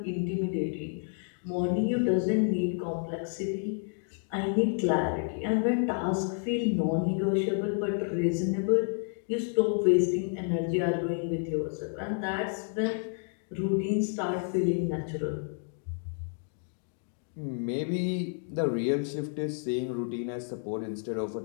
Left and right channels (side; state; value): right; silent; 58 dB below the other